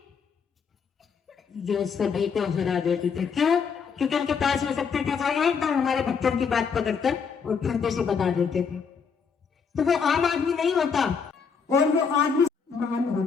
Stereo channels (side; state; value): right; quieter; 6.0 dB